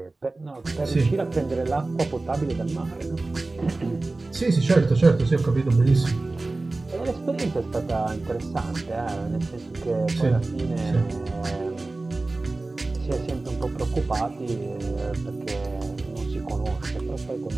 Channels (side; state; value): left; quieter; 3.2 dB